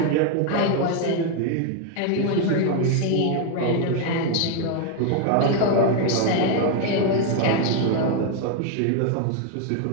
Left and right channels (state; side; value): different; both; correlation 0.01